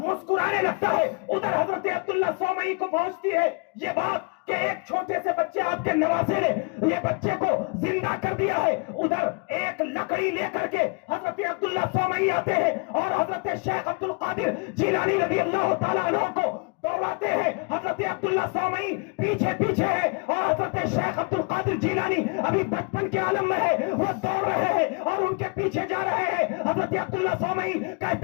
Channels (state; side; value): quieter; right; 32.4 dB